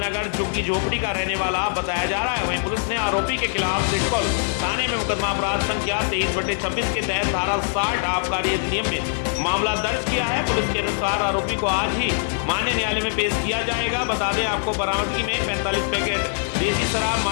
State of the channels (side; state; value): right; silent; 64 dB below the other